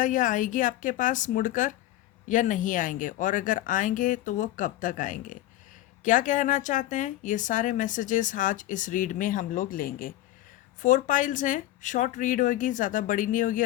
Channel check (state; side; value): quieter; right; 14.8 dB